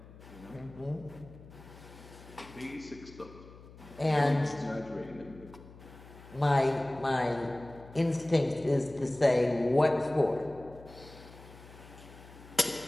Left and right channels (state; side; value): noise; left; hum, 19 dB below the sound